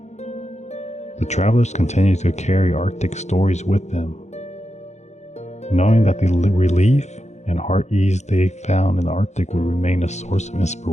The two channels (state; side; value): late; right; 0.33 ms